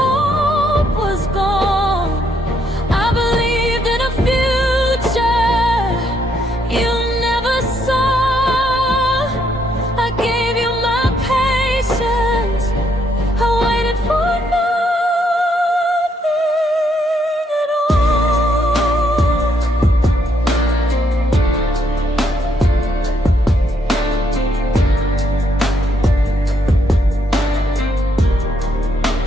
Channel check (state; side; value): normal; both; correlation 0.73